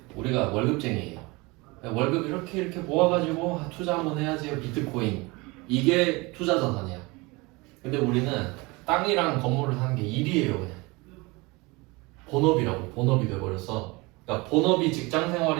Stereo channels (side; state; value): left; quieter; 24.7 dB